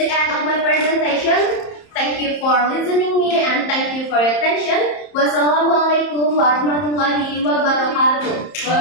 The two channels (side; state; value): right; late; 30 ms